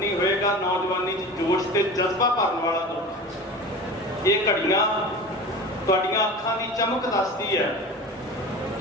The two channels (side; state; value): both; normal; correlation 0.34